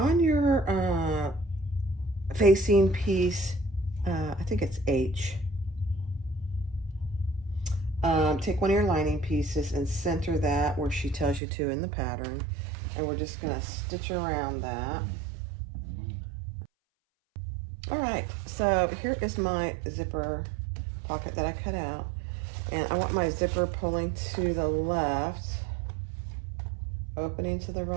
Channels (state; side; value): drops out; left; at 11.4 s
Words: your facing piece, I think it's H. Take one of your lining pieces and center that where she tells you to in the pattern. And we're just gonna stitch around that. All right, so here is my zipper pocket that I cut out. And I want my zipper pulling to the left, opening to the